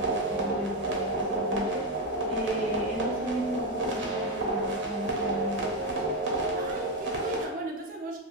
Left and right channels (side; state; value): both; normal; correlation 0.08